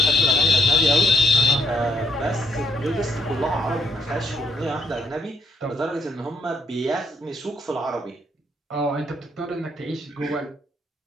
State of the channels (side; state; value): both; normal; correlation 0.72